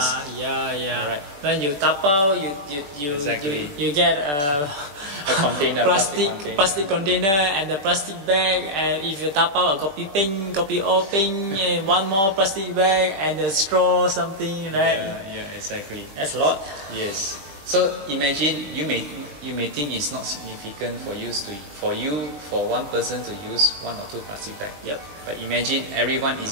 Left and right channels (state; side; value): late; left; 20 ms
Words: Yeah. Right. When you tapao, you get a container, plastic container and the plastic bag, and if you tapao a kopi peng, kopi o peng, and one more plastic bag and the straw, something, right? Yeah, exactly. That's a lot. Yes. So imagine you may think it's not significant for one person to use 1 or 2 plastic bags. Yep. But imagine everyone